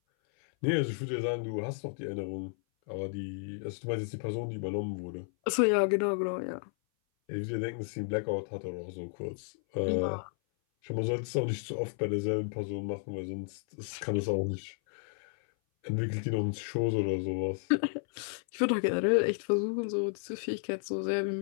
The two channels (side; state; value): right; silent; 56 dB below the other